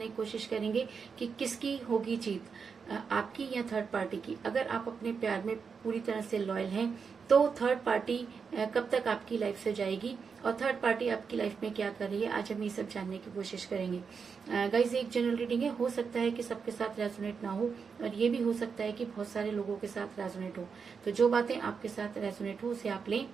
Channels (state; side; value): quieter; left; 5.8 dB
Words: की कोशिश करेंगे कि किसकी होगी जीत, आपकी या थर्ड पार्टी की। अगर आप अपने प्यार में पूरी तरह से लॉयल हैं तो थर्ड पार्टी कब तक आपकी लाइफ से जाएगी और थर्ड पार्टी आपकी लाइफ में क्या कर रही है, आज हम ये सब जानने की कोशिश करेंगे। गाइस, एक जनरल रीडिंग है, हो सकता है कि सबके साथ रेजोनेट ना हो और ये भी हो सकता है कि बहुत सारे लोगों के साथ रेजोनेट हो। तो जो बातें आपके साथ रेजोनेट हो उसे आप लें